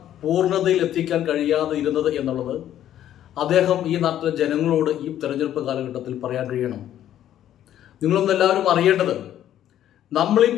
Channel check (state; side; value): quieter; right; 11.5 dB